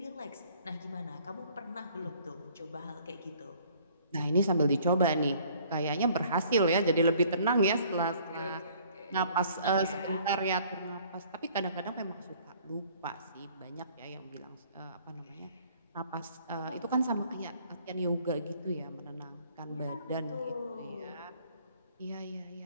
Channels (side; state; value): both; inverted; correlation -0.57